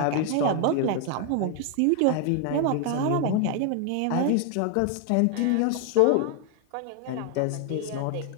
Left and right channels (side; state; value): both; different; correlation 0.00